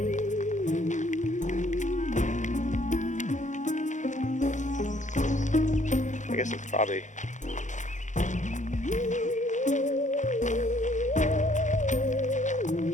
I guess it's probably...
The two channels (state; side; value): late; right; 0.35 ms